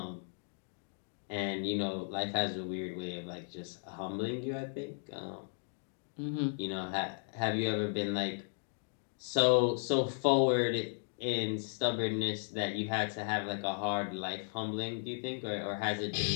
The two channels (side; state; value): right; silent; digital silence